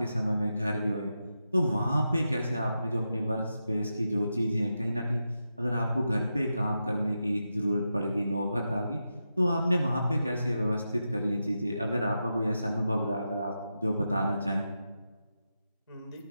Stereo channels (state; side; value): inverted; both; correlation -0.88